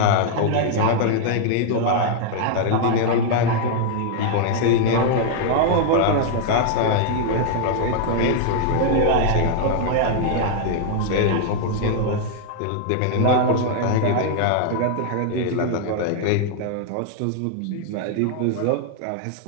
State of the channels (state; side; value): different; both; correlation 0.00